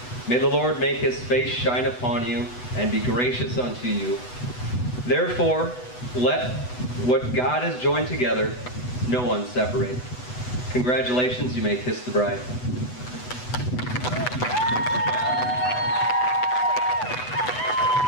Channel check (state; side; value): late; right; 8.0 ms